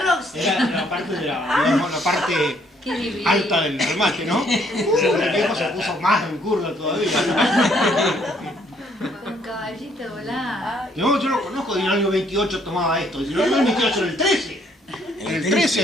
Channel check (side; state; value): both; normal; correlation 0.67